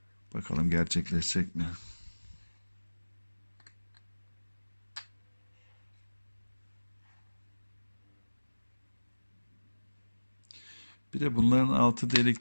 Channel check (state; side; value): inverted; both; correlation -1.00